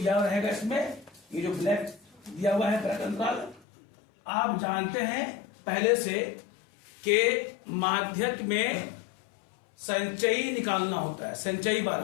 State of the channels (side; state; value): right; drops out; at 3.6 s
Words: हुआ है इसमें, ये जो ब्लैक दिया हुआ है ब्लैक अंतराल। आप जानते हैं पहले से कि माध्यक में संचयी निकालना होता है, संचयी